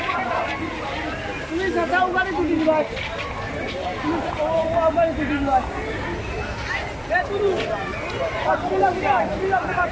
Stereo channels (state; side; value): identical; both; correlation 1.00